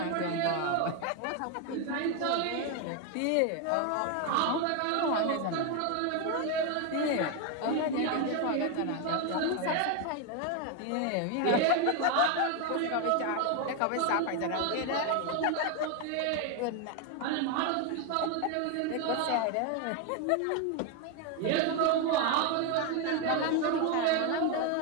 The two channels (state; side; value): different; both; correlation 0.01